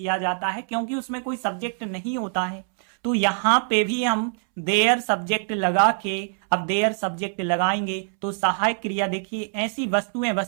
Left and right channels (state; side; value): silent; left; 63 dB below the other